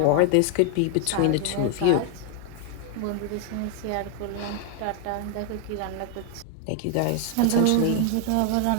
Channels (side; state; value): both; different; correlation 0.00